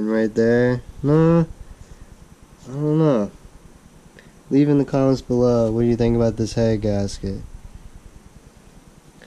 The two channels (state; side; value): identical; both; correlation 1.00